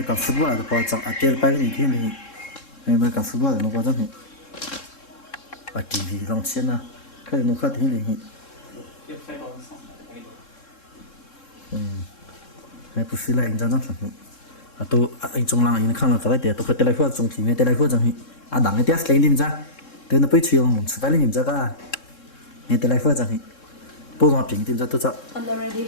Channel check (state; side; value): late; right; 3.7 ms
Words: cả football là có chẳng atelpai cái gì thì mer cả football nó có chẳng thì TV long chen na cái nó khác thì thì hay bút xí lại anh chẳng chẳng tôi anh trong làng anh khang là cái đấy tôi phải telefon trong thì mới telefon chẳng thì đằng cái test lên đi ra tôi nó phải chiều lòng phải lên ra cả nghe telefon chẳng thì bố nó bình tìm ra tôi sợ